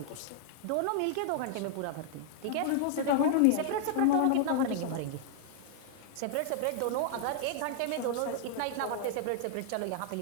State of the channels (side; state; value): both; different; correlation -0.01